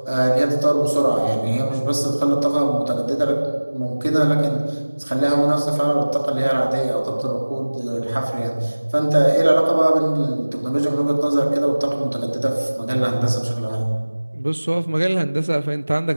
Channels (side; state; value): both; inverted; correlation -1.00